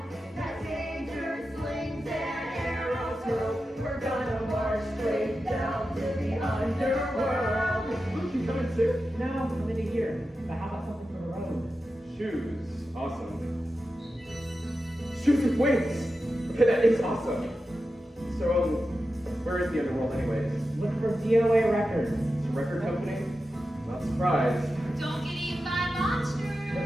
That danger slings and arrows hurl. we're gonna march straight down to the underworld. Luke, you coming too? No, I'm into here. But how about something for the road? Shoes. Awesome. Shoes with wings. Okay, that is awesome. So, where is the underworld anyways? Look for DOA Records. It's a record company? Not surprised. Don't get eaten by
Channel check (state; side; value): normal; both; correlation 0.91